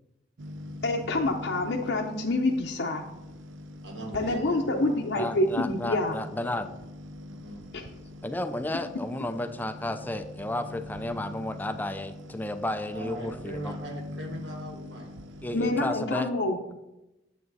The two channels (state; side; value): normal; both; correlation 0.41